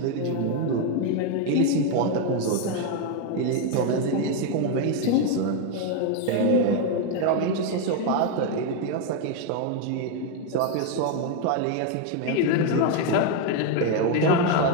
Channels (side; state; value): both; different; correlation 0.01